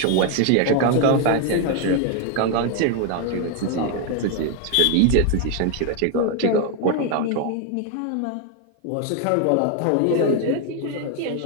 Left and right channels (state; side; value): different; both; correlation 0.01